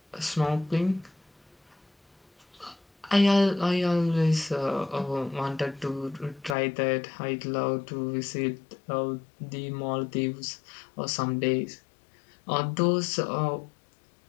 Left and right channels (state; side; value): drops out; right; at 6.6 s